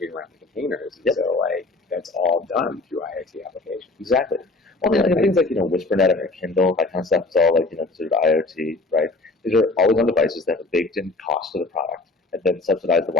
around the containers. And so like that's all done through IoT applications. Exactly. Well, I mean, things like, WhisperNet and Kindle, that kind of stuff is all like, considered IoT, right? These are always on devices that have a baked in cost to the product and then subsidize the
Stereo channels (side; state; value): right; quieter; 3.2 dB